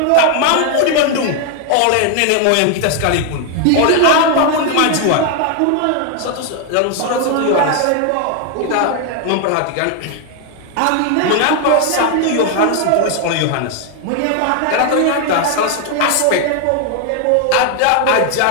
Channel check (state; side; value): different; both; correlation 0.01